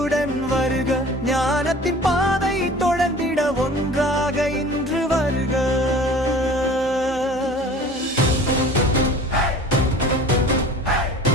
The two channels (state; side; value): normal; both; correlation 0.43